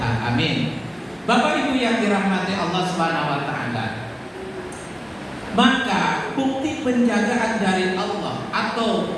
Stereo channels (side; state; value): both; identical; correlation 1.00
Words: Amin. Bapak Ibu yang dirahmati Allah Subhanahu Wa Taala. Maka bukti penjagaan dari Allah atau